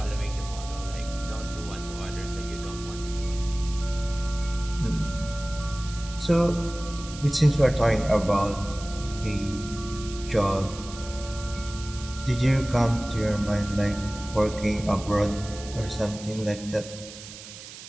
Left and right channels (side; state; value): right; noise; hiss, 14 dB below the sound